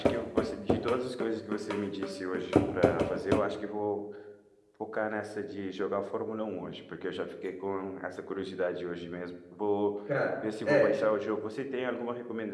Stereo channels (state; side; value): identical; both; correlation 1.00